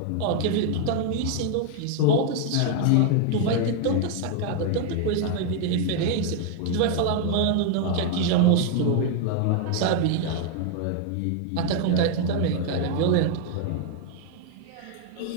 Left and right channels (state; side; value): different; both; correlation 0.00